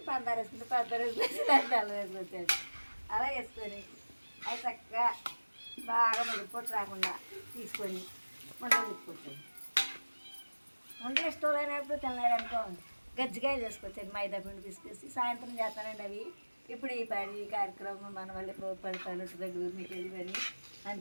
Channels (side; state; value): both; inverted; correlation -1.00